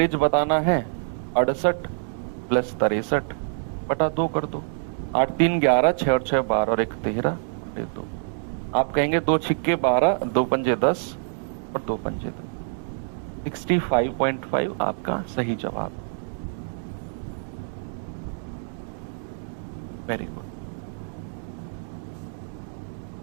बताना है। 68 + 63/2 कर दो। 8 3 11, 6 और 6 12 और 1 13 और 2। आप कहेंगे 2 छिक्के 12, 2 पंजे 10 और 2 पंजे 2। 65.5 आपका सही जवाब। Very good.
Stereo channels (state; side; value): silent; left; digital silence